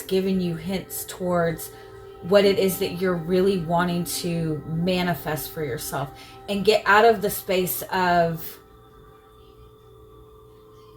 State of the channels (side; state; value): both; identical; correlation 1.00